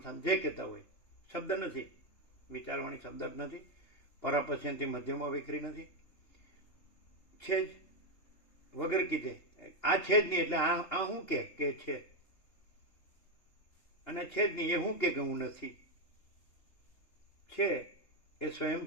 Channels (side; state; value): right; late; 3.3 ms